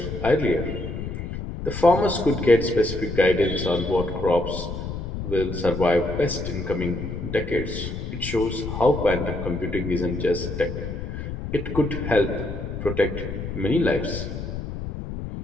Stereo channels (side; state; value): left; noise; rumble, 6 dB below the sound